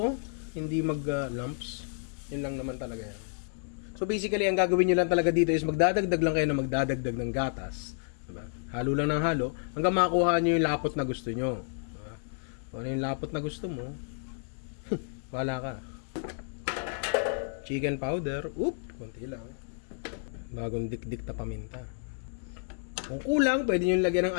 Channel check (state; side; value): silent; right; digital silence